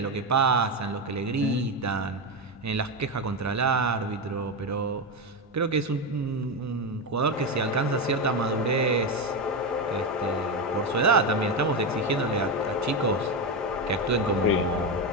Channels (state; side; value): normal; both; correlation 0.12